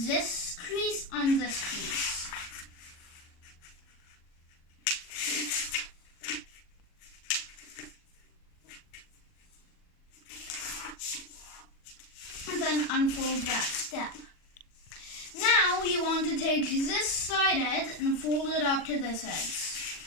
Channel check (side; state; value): right; late; 40 ms